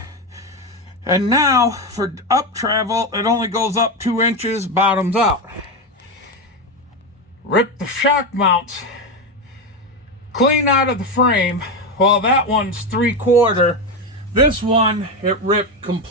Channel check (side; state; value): both; normal; correlation 0.13